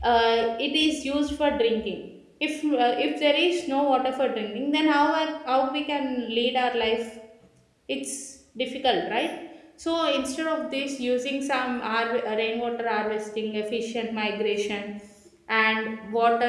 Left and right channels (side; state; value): both; identical; correlation 1.00